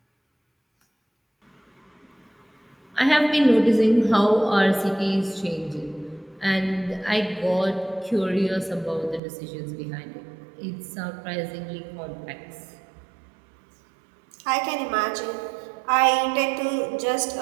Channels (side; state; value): left; drops out; at 9.2 s